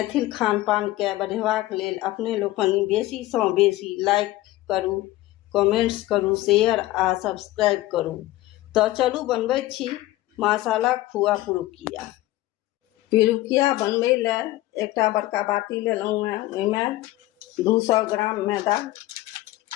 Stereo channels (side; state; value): right; quieter; 17.0 dB